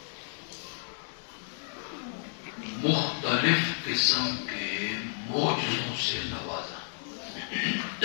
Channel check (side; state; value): right; silent; 57 dB below the other